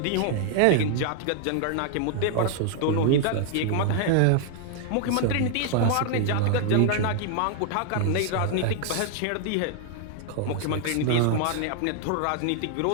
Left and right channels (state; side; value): different; both; correlation 0.00